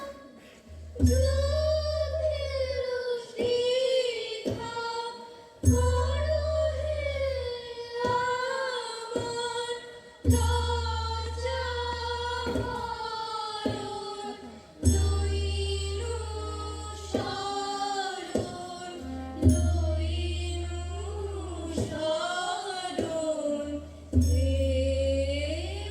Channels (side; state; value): both; identical; correlation 1.00